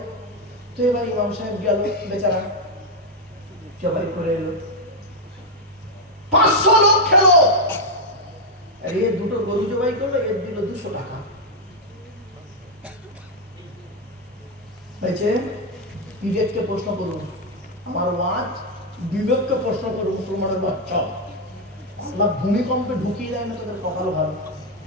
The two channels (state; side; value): normal; both; correlation 0.02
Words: তো এবার ইমাম সাহেব গেল, বেচারা জবাই করে এলো, 500 লোক খেলো। আর এ 2টো গরু জবাই করলো, এর দিল 200 টাকা। হয়েছে? বিবেককে প্রশ্ন করুন, আমার ওয়াজ বিবেককে প্রশ্ন করুন, মুসলমানের বাচ্চা। আল্লাহ ভূমিকম্পে ঢুকিয়ে দেয় না, তোদের কপাল ভালো,